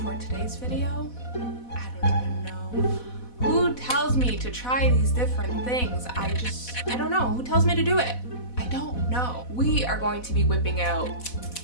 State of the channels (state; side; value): late; right; 4.1 ms